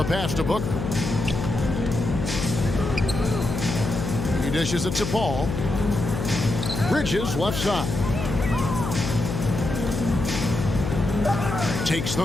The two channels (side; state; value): left; noise; hum, 4 dB below the sound